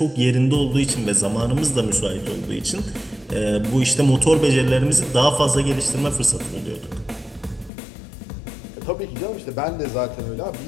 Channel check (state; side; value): drops out; right; at 7.7 s